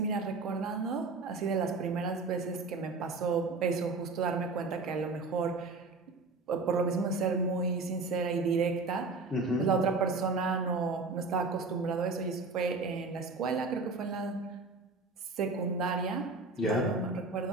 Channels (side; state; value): left; quieter; 3.8 dB